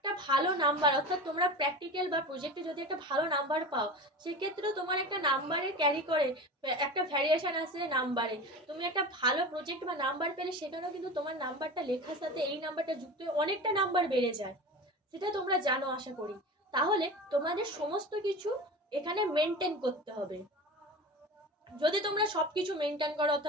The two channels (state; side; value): normal; both; correlation 0.31